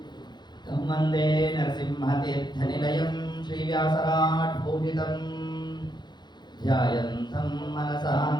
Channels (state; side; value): late; right; 0.21 ms